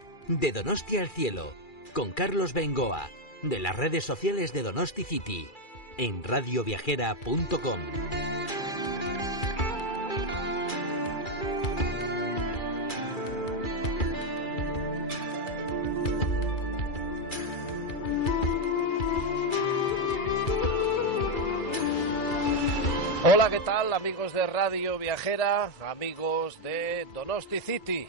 De Donosti al Cielo, con Carlos Bengoa, de las redes sociales de Donosti City, en radioviajera.com. Hola, ¿qué tal, amigos de Radio Viajera, amigos de Donosti City?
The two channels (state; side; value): late; right; 2.3 ms